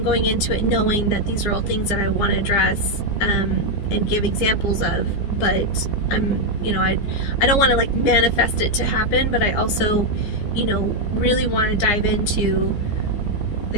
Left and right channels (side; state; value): right; late; 15 ms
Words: into it knowing that these are all things that I want to address, and give examples of, but you know, I don't want to like manifest it to happen, but I also, you know, really want to dive into